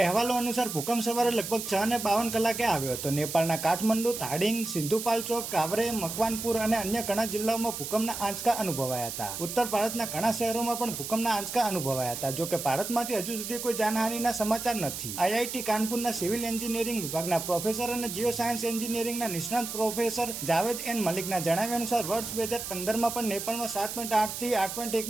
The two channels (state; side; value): noise; right; hiss, 6 dB below the sound